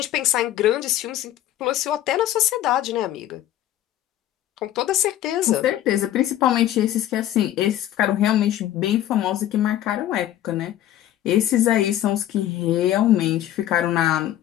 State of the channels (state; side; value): quieter; right; 12.6 dB